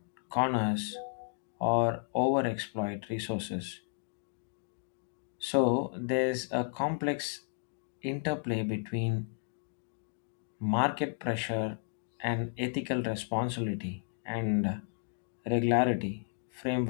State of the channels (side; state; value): right; silent; digital silence